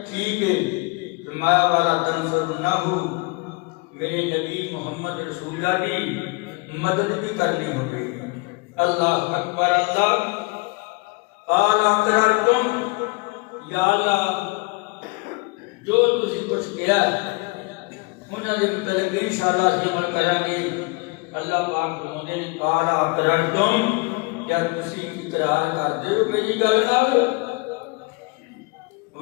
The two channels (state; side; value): quieter; right; 27.5 dB